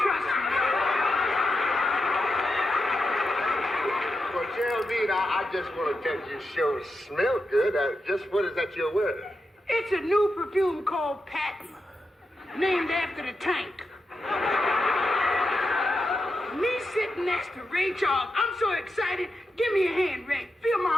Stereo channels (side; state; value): both; normal; correlation 0.87